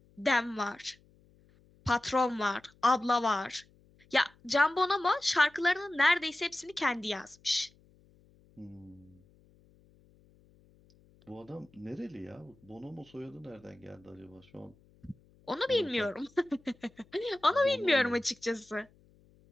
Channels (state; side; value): noise; left; hum, 30 dB below the sound